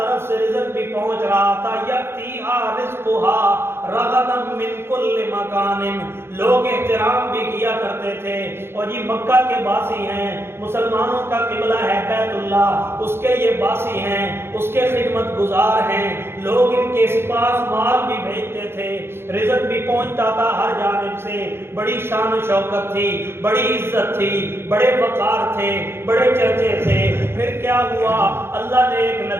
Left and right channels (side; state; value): left; late; 0.12 ms